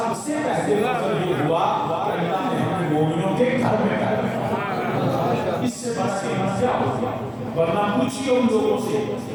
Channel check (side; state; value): both; identical; correlation 1.00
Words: سے پہلے فضل یہ ہوا کہ اللہ نے ہمیں مومنوں کے گھر میں پیدا، اس سے بڑا قیمت کیا ہوگا؟ ورنہ پوچھئے ان لوگوں سے